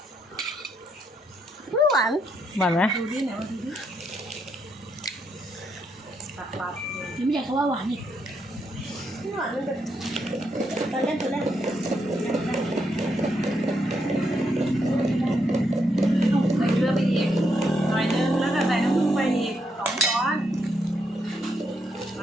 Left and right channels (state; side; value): normal; both; correlation 0.78